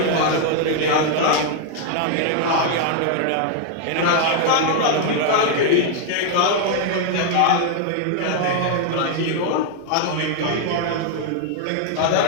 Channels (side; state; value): both; different; correlation 0.00